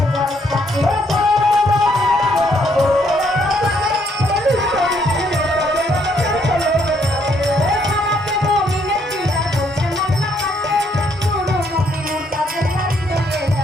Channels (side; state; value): both; normal; correlation 0.70